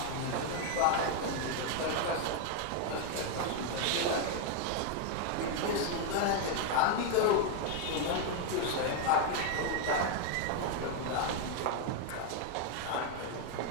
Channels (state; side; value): different; both; correlation 0.01